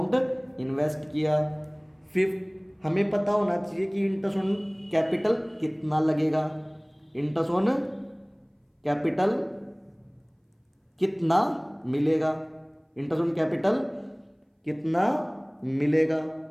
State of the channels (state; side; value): identical; both; correlation 1.00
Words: इन्वेस्ट किया। फिफ्थ, हमें पता होना चाहिए कि इंटरेस्ट ऑन कैपिटल कितना लगेगा, इंटरेस्ट ऑन कैपिटल कितना मिलेगा, इंटरेस्ट ऑन कैपिटल कितना मिलेगा।